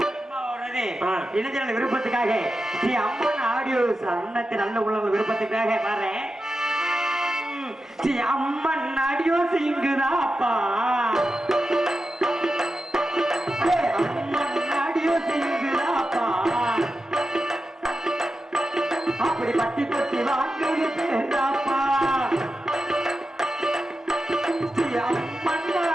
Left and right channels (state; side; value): normal; both; correlation 0.91